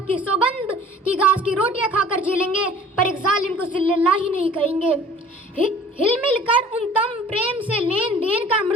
की सौगंध की घास की रोटियां खाकर जी लेंगे पर एक जालिम को जिल्लल्लाह ही नहीं कहेंगे। हिलमिल कर उन तम प्रेम से लेन देन का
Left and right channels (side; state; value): both; normal; correlation 0.49